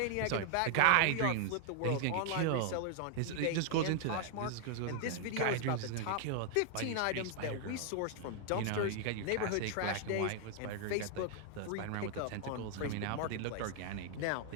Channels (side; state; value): both; different; correlation 0.00